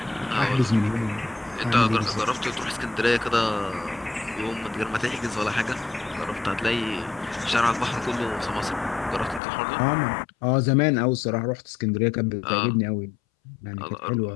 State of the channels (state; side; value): drops out; right; at 9.4 s